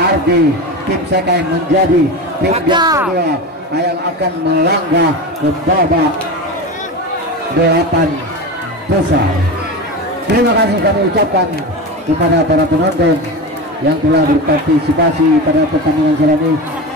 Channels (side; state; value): both; normal; correlation 0.24